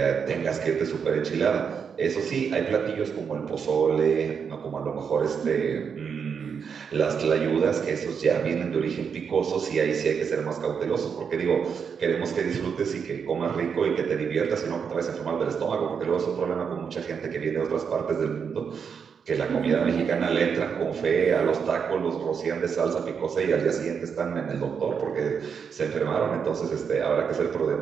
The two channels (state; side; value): quieter; left; 6.6 dB